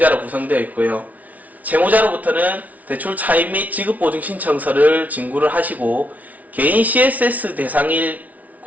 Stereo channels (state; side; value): late; left; 0.072 ms